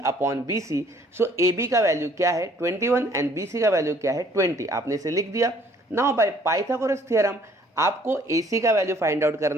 upon B C. So A B का वैल्यू क्या है 21 एंड बी सी का वैल्यू क्या है 20, आपने इसे लिख दिया। नाउ बाय पाइथागोरस थ्योरम आपको ए सी का वैल्यू फाइंड आउट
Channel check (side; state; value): both; normal; correlation 0.60